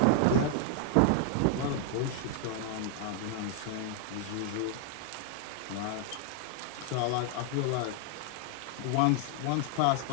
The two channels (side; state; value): both; different; correlation 0.00